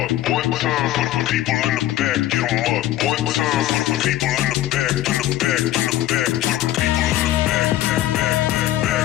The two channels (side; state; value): right; quieter; 14.4 dB